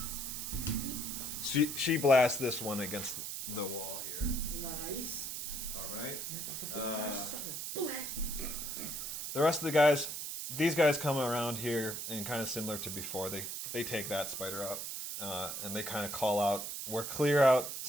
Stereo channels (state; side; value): noise; right; hiss, 5 dB below the sound